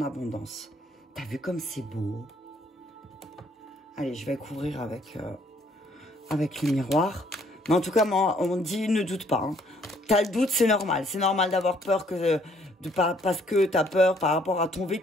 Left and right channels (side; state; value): both; normal; correlation 0.65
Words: abondance. T'as vu comme c'est beau? Allez, je vais couvrir avec le miroir. Mais en tout cas, on dit ne doute pas. Hein. T'as le doute, c'est normal. C'est normal d'avoir peur que... parce que tu as peur par rapport à ton